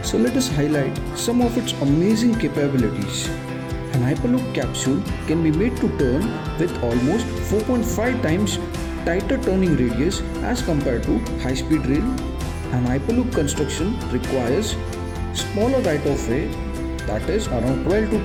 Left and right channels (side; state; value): both; identical; correlation 1.00